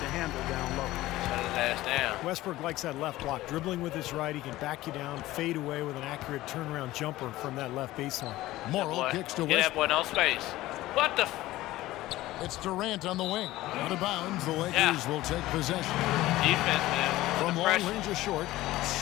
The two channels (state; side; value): quieter; right; 16.7 dB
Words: handle down low. Shut his ass down. Westbrook likes that left block. Dribbling with his right, he can back you down, fade away with an accurate turnaround jumper from that left baseline. Morrill kicks to Get that boy Westbrook. no space. What the? It's Durant on the wing. Out of bounds, the Lakers will take possession. Defense, man. From long range or short,